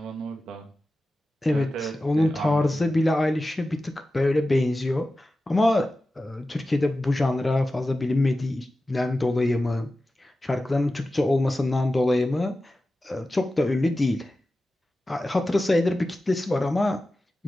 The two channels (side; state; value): both; normal; correlation 0.94